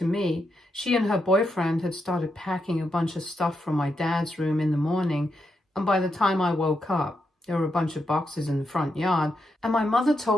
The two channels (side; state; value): both; normal; correlation 0.83